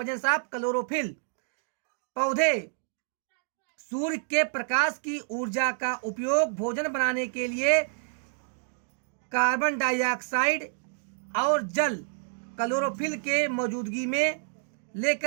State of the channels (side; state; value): left; silent; digital silence